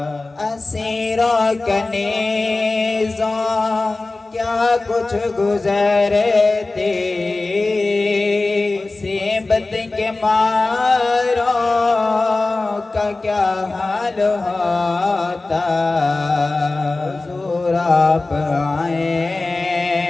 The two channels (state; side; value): quieter; right; 3.3 dB